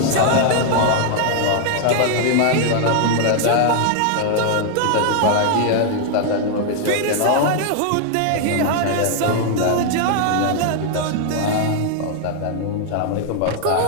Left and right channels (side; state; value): both; different; correlation 0.00